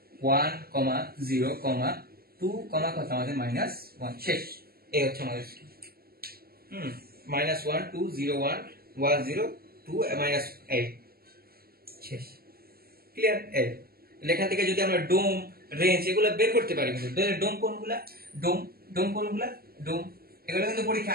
0, 2, কত আমাদের? -1। শেষ। এই হচ্ছে আমাদের -1 2 0 1 1 0 2 -8। শেষ। ক্লিয়ার? এখান থেকে যদি আমরা ডোম, রেঞ্জ এগুলো বের করতে পারি, কিন্তু ডোম কোনগুলা? ডোম কোনগুলা? ডোম এগুলো কিন্তু পরীক্ষা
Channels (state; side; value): late; left; 0.44 ms